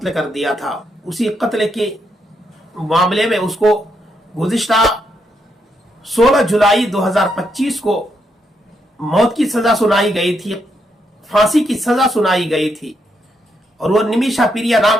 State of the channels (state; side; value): normal; both; correlation 0.79